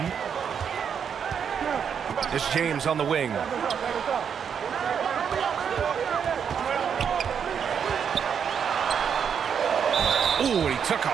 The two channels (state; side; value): quieter; left; 7.4 dB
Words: It's James on the wing. Ooh, he took